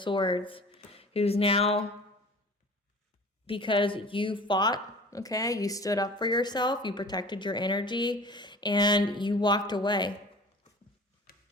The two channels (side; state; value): both; normal; correlation 0.42